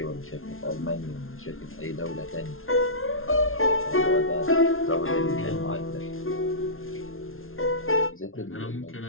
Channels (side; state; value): right; late; 0.61 ms